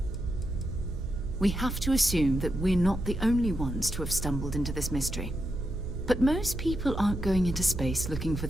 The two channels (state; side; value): noise; right; hum, 8 dB below the sound